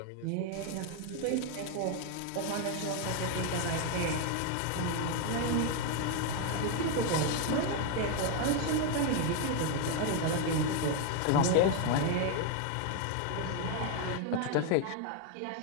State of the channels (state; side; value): different; both; correlation 0.01